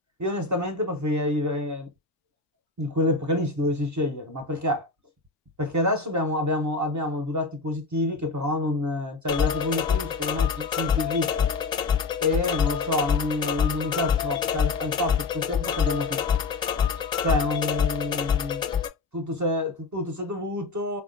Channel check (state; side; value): quieter; right; 3.8 dB